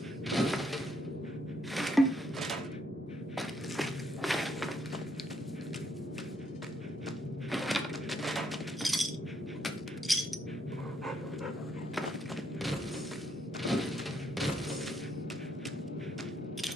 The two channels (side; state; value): both; normal; correlation 0.74